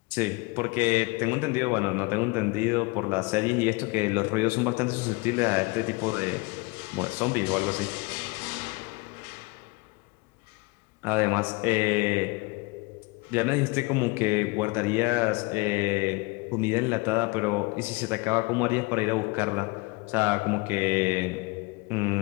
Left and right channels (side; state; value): right; quieter; 26.3 dB